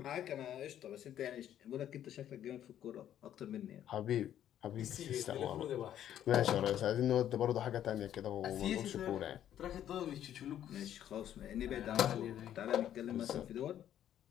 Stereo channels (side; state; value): right; quieter; 10.9 dB